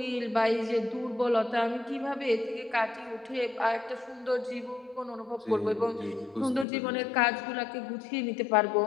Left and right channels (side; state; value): right; drops out; at 6.7 s